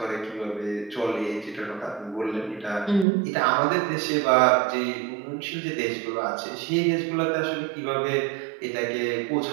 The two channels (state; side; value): drops out; left; at 3.1 s